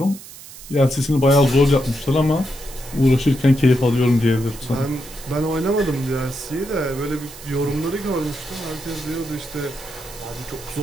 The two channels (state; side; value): noise; right; hiss, 16 dB below the sound